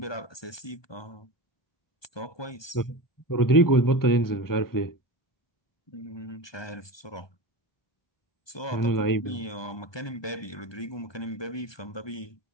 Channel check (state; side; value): late; right; 1.2 ms